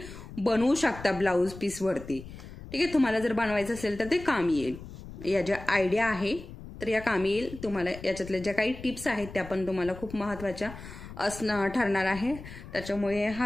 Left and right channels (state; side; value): noise; left; rumble, 14 dB below the sound